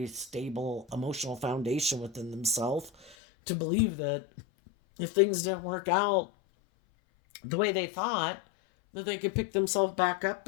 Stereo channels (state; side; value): drops out; right; at 3.2 s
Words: stable emotional foundation within themselves to believe that if things didn't work out the way they thought, that they could pick themselves back up